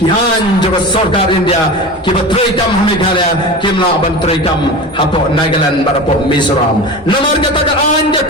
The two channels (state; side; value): normal; both; correlation 0.30